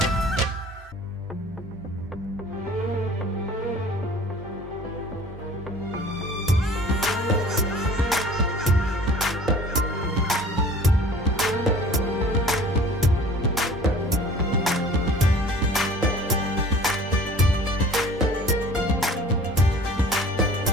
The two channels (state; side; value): normal; both; correlation 0.47